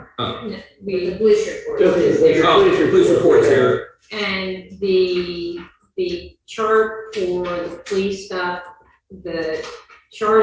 Oh. No, the police report Just is the there. Oh, police report's here. And the chart for the police stuff, the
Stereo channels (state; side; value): identical; both; correlation 1.00